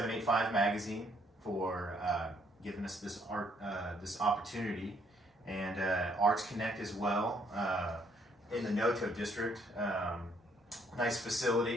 Magazine for giving us this opportunity, and ArtsConnect as well. In the Noto district, nice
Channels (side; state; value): both; normal; correlation 0.68